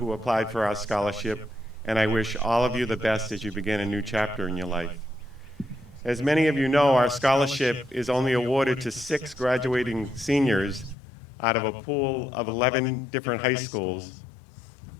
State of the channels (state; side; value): drops out; right; at 11.0 s